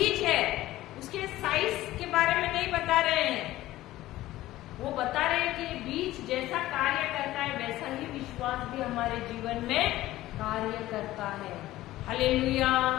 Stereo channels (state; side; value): quieter; right; 16.0 dB